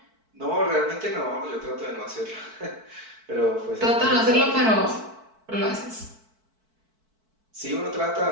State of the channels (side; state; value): left; late; 4.5 ms